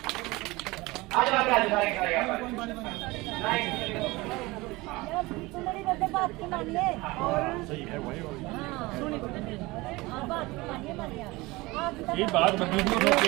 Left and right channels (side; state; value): left; quieter; 21.9 dB